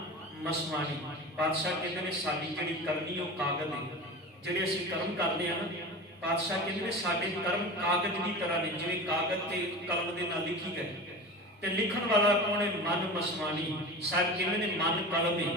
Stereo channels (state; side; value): normal; both; correlation 0.31